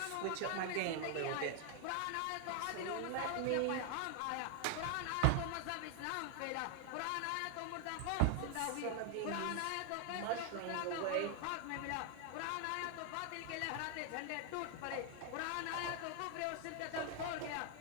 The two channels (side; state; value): both; different; correlation 0.00